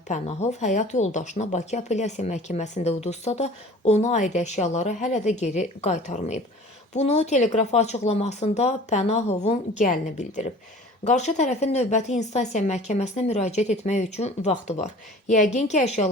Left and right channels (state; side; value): normal; both; correlation 0.45